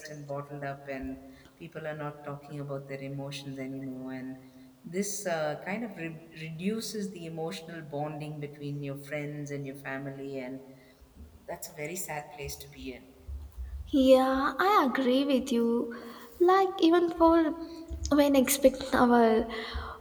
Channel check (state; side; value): identical; both; correlation 1.00